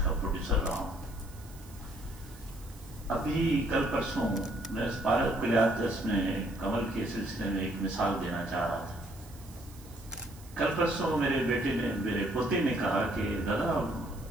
کا پروڈیوسر رہا ہوں. ابھی کل پرسوں میں اس پارک کلیاتس میں کمل کے سلسلے میں ایک مثال دینا چاہ رہا تھا. کل پرسوں میرے پوتے نے کہا کہ دادا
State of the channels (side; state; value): right; noise; hiss, 22 dB below the sound